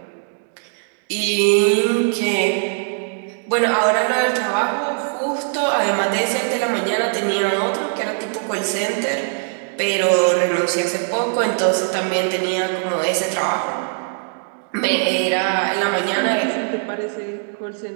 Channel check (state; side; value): silent; left; 63 dB below the other